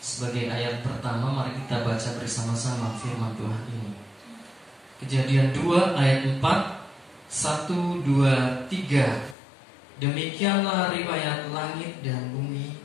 Sebagai ayat pertama, mari kita baca bersama-sama firman Tuhan ini. Kejadian 2 ayat 4, 1, 2, 3. Demikianlah riwayat langit dan bumi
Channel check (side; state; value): right; drops out; at 9.3 s